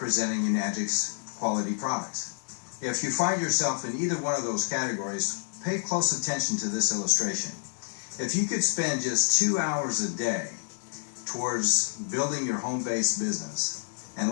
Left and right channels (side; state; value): right; silent; 59 dB below the other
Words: Enagic's quality products. If you find yourself in either one of those categories, pay close attention to this illustration. If you could spend just 2 hours a day towards building your home-based business, and